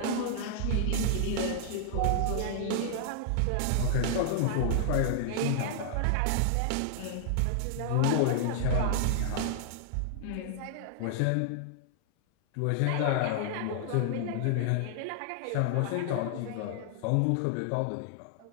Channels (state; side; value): different; both; correlation -0.01